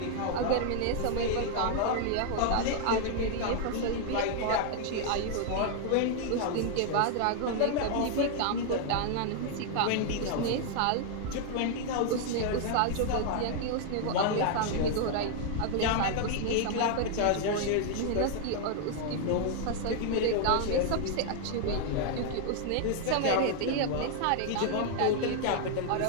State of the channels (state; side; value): different; both; correlation 0.00